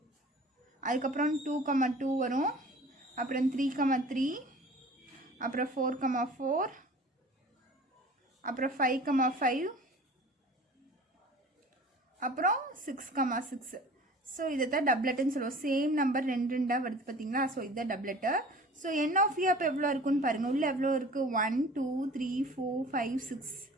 அதுக்கப்புறம் 2 2 வரும், அப்புறம் 3 3, அப்புறம் 4 4, அப்புறம் 5 5, அப்புறம் 6 6. ஸோ இதை தான் டப்லெட்டுன்னு சொல்லுவோம். சேம் நம்பர் ரெண்டாக வருது பார்த்தீங்களா. ஸோ இதுதான் டப்லெட்டு. ஸோ என் ஆஃப் ஏ அப்போ எவ்வளோ இருக்குன்னு பாருங்கள். உள்ளே எவ்வளோ இருக்குது, 1 2 3 4 5 6.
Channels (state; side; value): normal; both; correlation 0.44